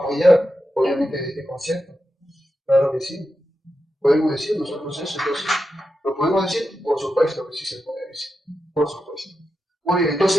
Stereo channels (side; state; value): both; normal; correlation 0.89